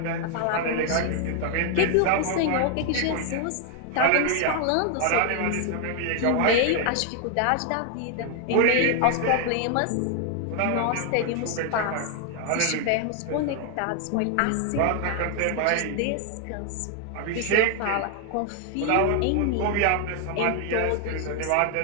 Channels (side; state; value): both; different; correlation 0.00